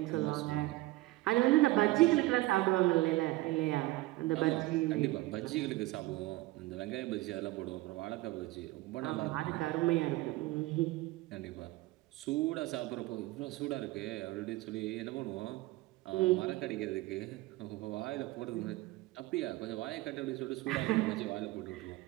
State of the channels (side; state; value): left; quieter; 19.3 dB